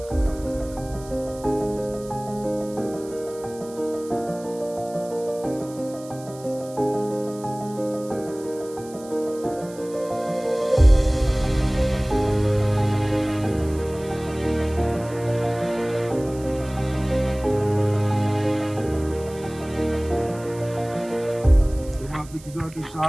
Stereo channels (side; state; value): right; noise; hiss, 20 dB below the sound